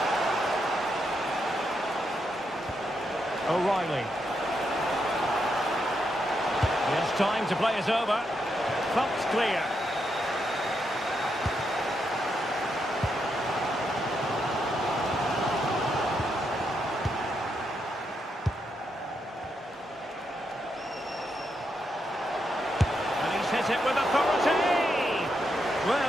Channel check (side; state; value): both; normal; correlation 0.81